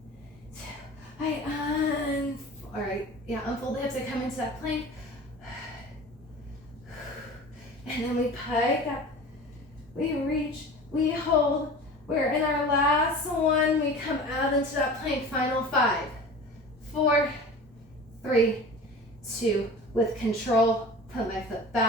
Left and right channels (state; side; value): normal; both; correlation 0.38